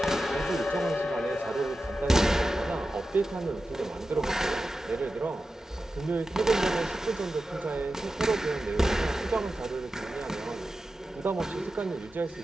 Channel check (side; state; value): both; normal; correlation 0.93